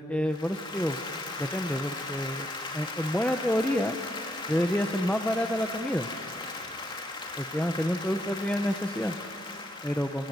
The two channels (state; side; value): normal; both; correlation 0.77